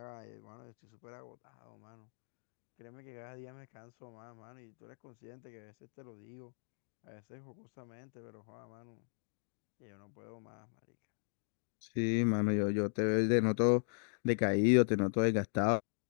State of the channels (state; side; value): silent; right; digital silence